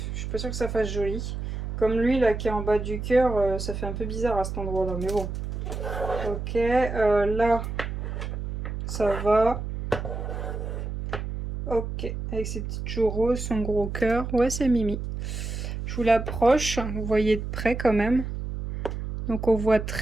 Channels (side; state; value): right; noise; hum, 5 dB below the sound